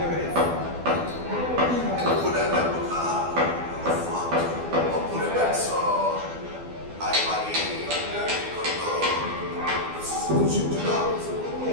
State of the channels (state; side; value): late; left; 12 ms